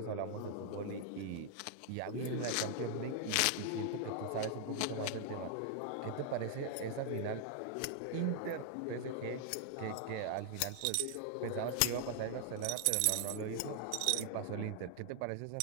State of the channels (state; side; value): different; both; correlation 0.00